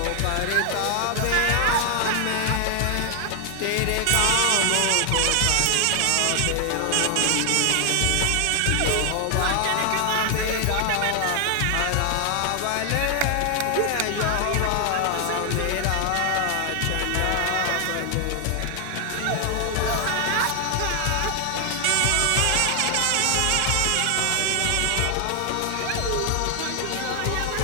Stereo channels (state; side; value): different; both; correlation 0.00